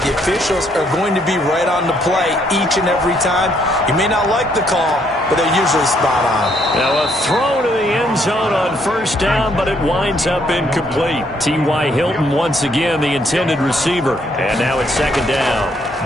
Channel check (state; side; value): normal; both; correlation 0.70